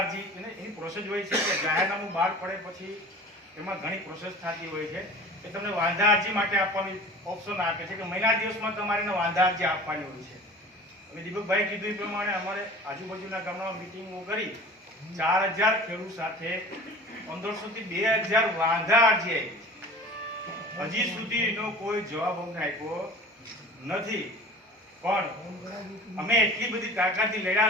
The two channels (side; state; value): both; normal; correlation 0.40